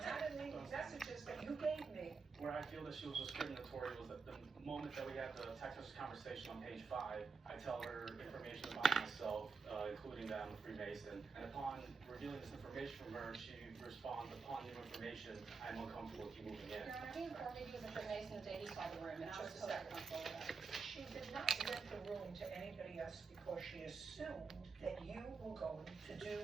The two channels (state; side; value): quieter; left; 4.9 dB